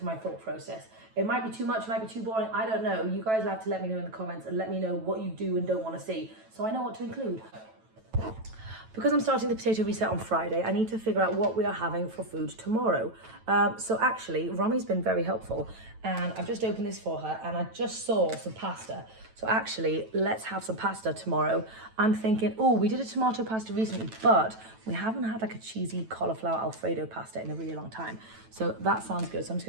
my thought process. It might be too much, it might be too boring. I don't know. You guys have to let me know in the comments and let me know what you do and don't want to see, so I know what to include. because I'm starting the potato reset on Friday, I need to figure out what we are having for food tomorrow. So actually, Romi's been very helpful, and I've just opened this for her, and I just saw some pasta. So actually, let's have some pasta tomorrow. I'm thinking, oh, we did a tomato pasta recently, but we haven't had like a cheesy cauliflower Alfredo pasta in a really long time. So that sounds good. So I'm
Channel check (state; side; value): late; left; 9.1 ms